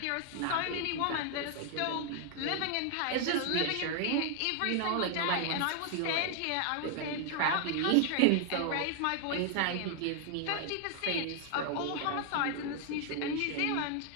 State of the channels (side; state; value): both; different; correlation 0.00